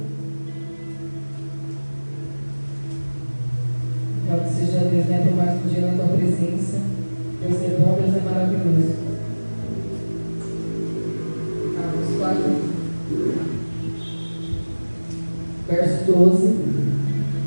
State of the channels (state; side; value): inverted; both; correlation -1.00